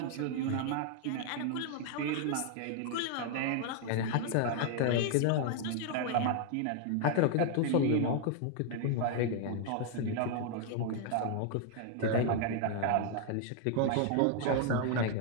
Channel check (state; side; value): different; both; correlation 0.00